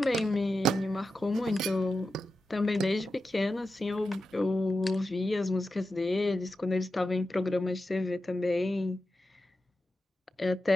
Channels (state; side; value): normal; both; correlation 0.90